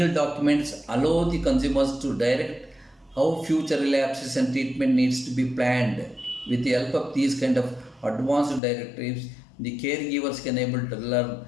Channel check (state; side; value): drops out; right; at 8.6 s